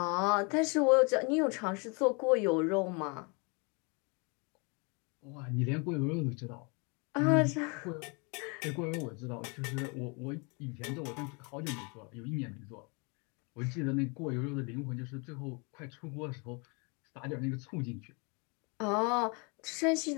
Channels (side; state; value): right; quieter; 32.4 dB